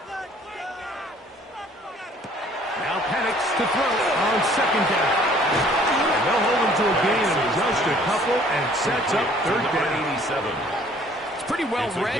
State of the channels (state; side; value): normal; both; correlation 0.57